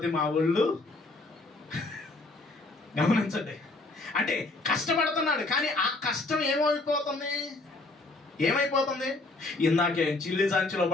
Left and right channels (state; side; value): quieter; right; 3.1 dB